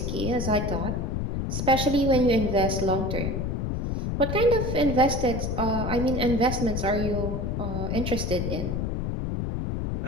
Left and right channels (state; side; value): noise; left; rumble, 1 dB below the sound